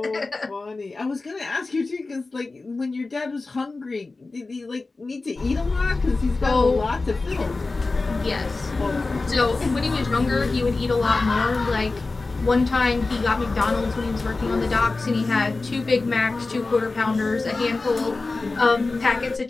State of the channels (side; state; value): right; quieter; 3.6 dB